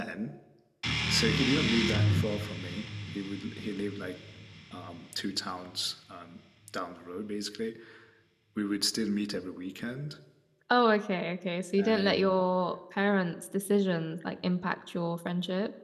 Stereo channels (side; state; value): both; identical; correlation 1.00